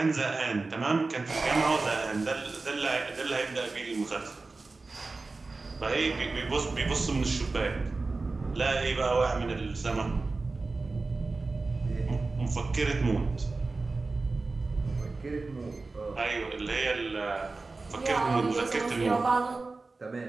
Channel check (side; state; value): left; quieter; 3.7 dB